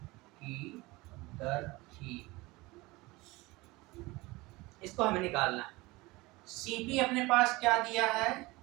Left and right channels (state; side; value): quieter; left; 22.0 dB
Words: की दर थी, इसको हमें निकालना है। सीपी अपने पास क्या दिया है?